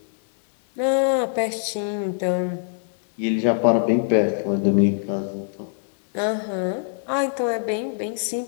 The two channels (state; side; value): silent; right; digital silence